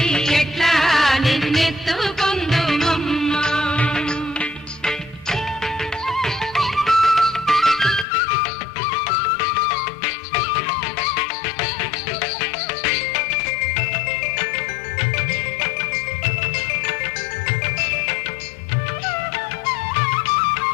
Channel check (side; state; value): right; drops out; at 8.1 s